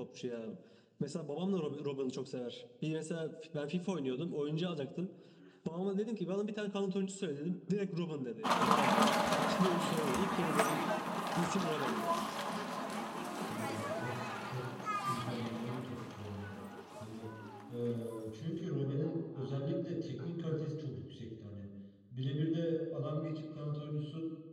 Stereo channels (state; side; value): identical; both; correlation 1.00